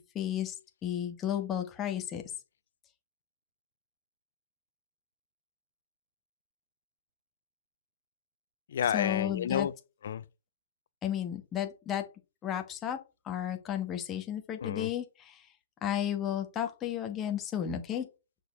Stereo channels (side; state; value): right; quieter; 9.6 dB